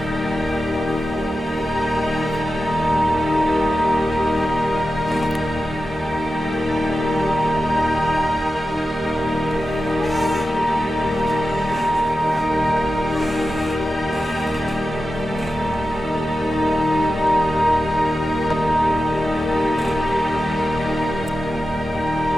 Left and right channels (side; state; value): both; normal; correlation 0.92